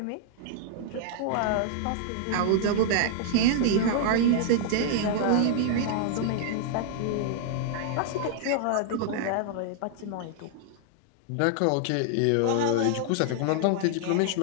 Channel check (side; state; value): both; different; correlation -0.01